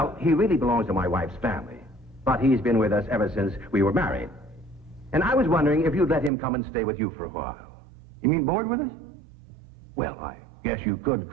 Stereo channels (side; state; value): left; drops out; at 6.3 s